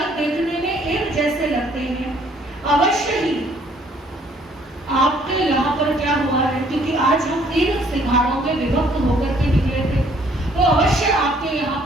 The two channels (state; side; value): normal; both; correlation 0.62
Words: देखने में एक जैसे लगते हैं। अवश्य ही आपके यहाँ पर क्या हुआ है, क्योंकि आज हम 3 सिंहारों में विभक्त होकर के निकले थे, तो अवश्य आपके यहाँ